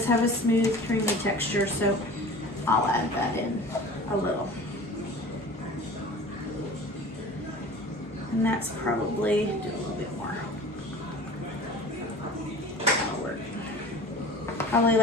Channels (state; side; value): normal; both; correlation 0.40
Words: have a smooth, creamy texture, so I'll add that in a little. And that's probably, do a little bit more. That'll work. Probably